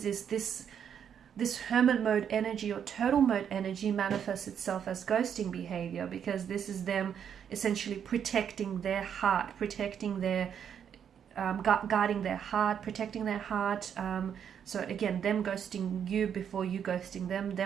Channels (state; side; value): quieter; left; 8.3 dB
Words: is this hermit mode energy or turtle mode energy manifests itself as ghosting behavior, because this is them essentially protecting their heart, protecting their guarding their heart, protecting their heart. So again, them ghosting you before you ghosting